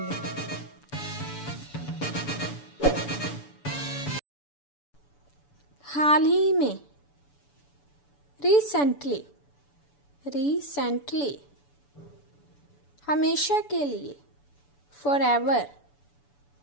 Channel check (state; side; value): late; right; 6.9 ms